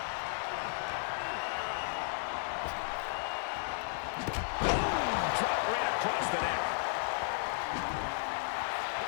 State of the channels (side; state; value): right; silent; 55 dB below the other